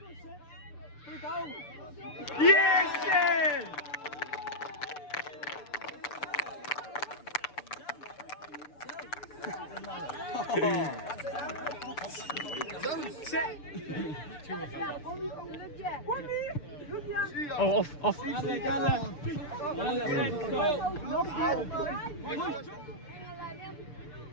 Put it down. Yes, Seth. Oh, off.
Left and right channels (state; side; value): late; right; 6.8 ms